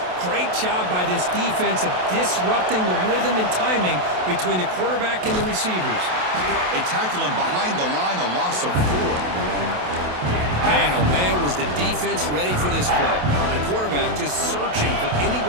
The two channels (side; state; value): left; late; 27 ms